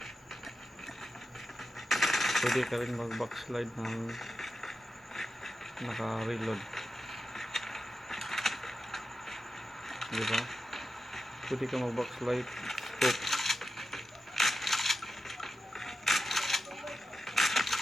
pwede ka rin mag backslide ng naka-reload. Diba? Pwede ka mag backslide, scope.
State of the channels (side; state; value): both; normal; correlation 0.90